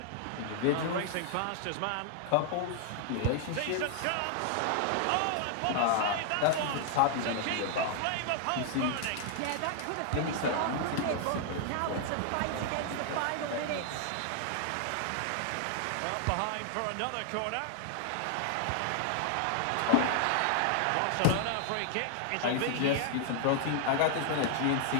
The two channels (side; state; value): both; different; correlation 0.00